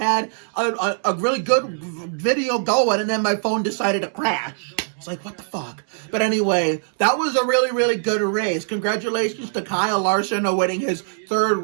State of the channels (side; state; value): left; silent; 64 dB below the other